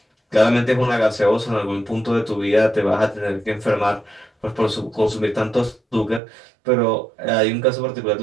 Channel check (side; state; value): left; drops out; at 6.2 s